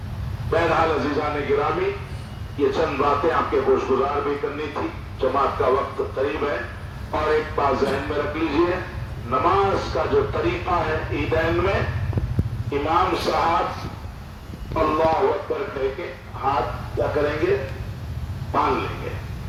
بہرحال عزیزان گرامی، یہ چند باتیں آپ کے گوش گزار بھی کرنی تھی، جماعت کا وقت قریب ہے، اور ایک بات ذہن میں رکھ لیجئے، نماز کا جو طریقہ ہے عیدین میں، امام صاحب اللہ اکبر کہہ کے ہاتھ کیا کریں گے؟ باندھ لیں گے،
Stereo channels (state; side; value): identical; both; correlation 1.00